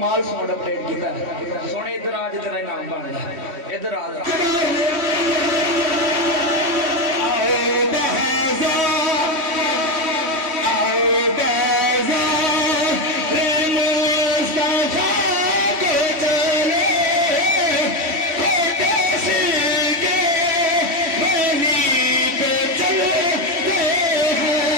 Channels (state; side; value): late; left; 3.1 ms